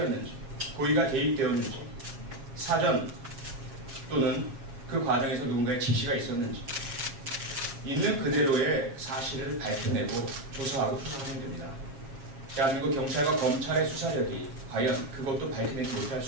고의가 개입되었는지, 사전 또는 그 과정에서 누군가의 지시가 있었는지 있는 그대로의 사실을 밝혀내고 조사하고 수사하면 됩니다. 대한민국 경찰과 검찰의 수사력이 과연 그것도 밝혀내지 못할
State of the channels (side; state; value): left; late; 7.4 ms